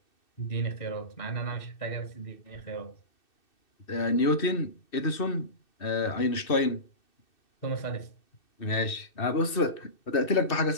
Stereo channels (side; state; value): right; late; 2.6 ms